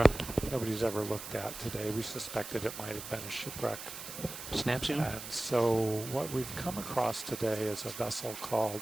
Nobody's ever looked at today. We suspected it might have been a shipwreck. Snap zoom? And so what we've come across today is a vessel called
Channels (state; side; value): noise; right; hiss, 10 dB below the sound